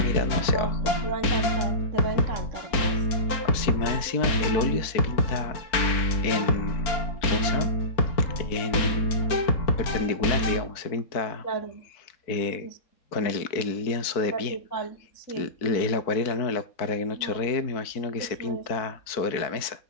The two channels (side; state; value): right; late; 4.4 ms